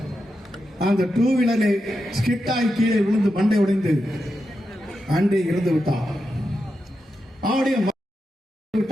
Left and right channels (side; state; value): both; normal; correlation 0.88